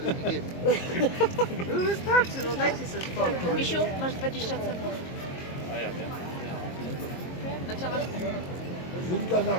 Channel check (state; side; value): late; right; 22 ms